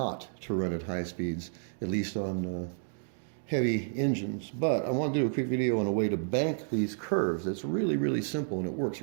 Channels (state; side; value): silent; left; digital silence